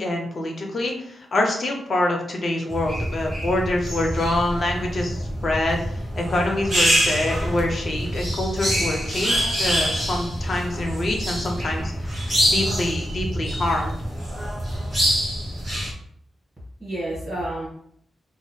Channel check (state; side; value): normal; both; correlation 0.86